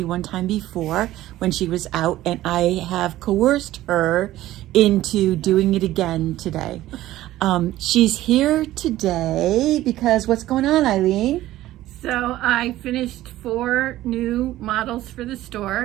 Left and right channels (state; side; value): quieter; left; 15.1 dB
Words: one time before when she was out, and I have coerced her into doing it again today. She's here today because what's going on, Eileen? So I finished 4 new models for the